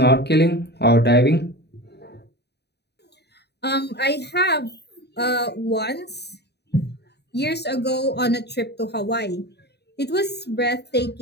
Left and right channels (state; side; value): late; right; 0.48 ms